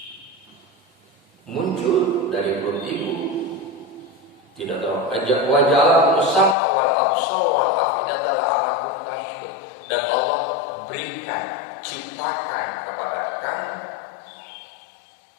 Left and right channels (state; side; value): drops out; right; at 6.6 s